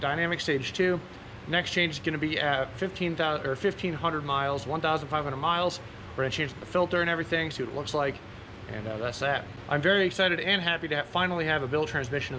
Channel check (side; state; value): both; identical; correlation 1.00